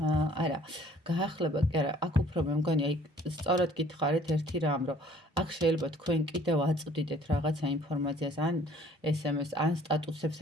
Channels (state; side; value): normal; both; correlation 0.56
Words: გაახლება კი არა, აქ უფრო მე მგონი, აი სწორად გითხარით ერთი რამ, რომ აქ შეიძლება თქვენ კიდევ აწვდიდეთ რაღაცა ინფორმაციას, ან SMS, ან სტატუსებს